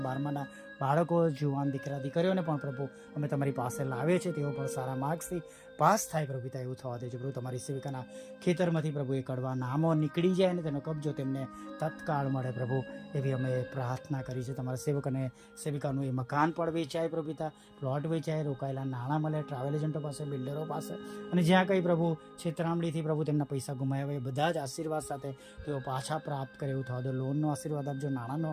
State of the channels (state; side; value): identical; both; correlation 1.00